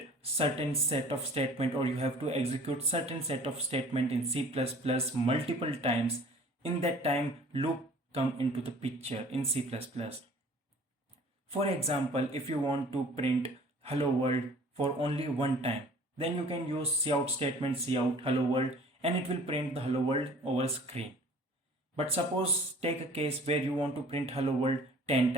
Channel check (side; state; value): both; normal; correlation 0.48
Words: certain set of statement or you have to execute certain set of statement in C++ multiple times. In that time, loop come into the picture in C++. For example, if you want to print hello world for only one time, then you can use cout statement cout hello world and it will print the hello world over screen. But suppose take a case where you want to print hello world 10